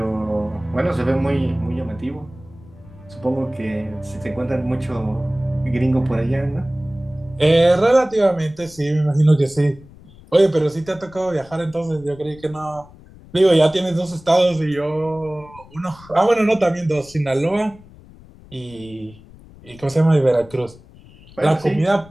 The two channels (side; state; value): left; noise; rumble, 22 dB below the sound